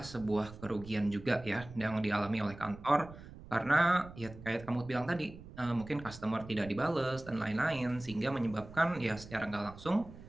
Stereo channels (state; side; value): noise; right; rumble, 16 dB below the sound